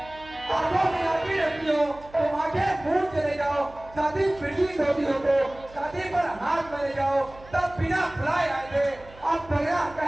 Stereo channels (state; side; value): noise; right; hum, 21 dB below the sound